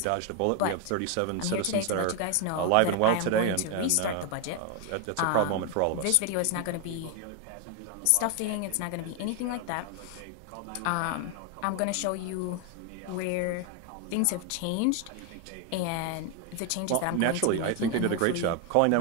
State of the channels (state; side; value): different; both; correlation 0.01